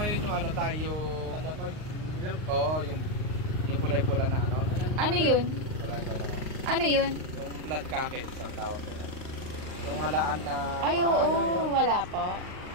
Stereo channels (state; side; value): late; left; 38 ms